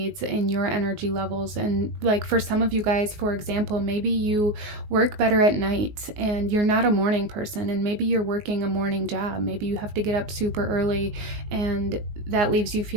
and your energy levels. And like for some of you guys, for example, maybe you work better at night and you're not a morning person, and maybe you're working a morning job. Maybe you have to get up super early, and that leaves you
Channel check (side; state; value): left; late; 19 ms